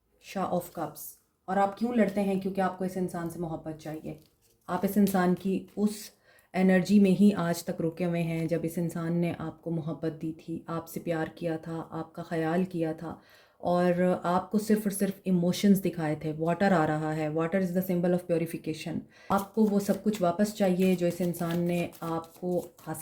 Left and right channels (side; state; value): both; identical; correlation 1.00